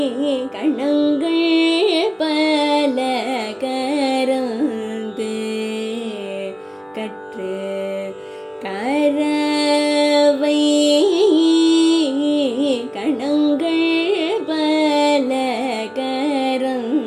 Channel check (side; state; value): both; identical; correlation 1.00